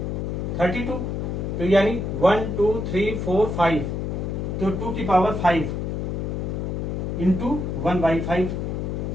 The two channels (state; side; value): noise; left; hum, 2 dB below the sound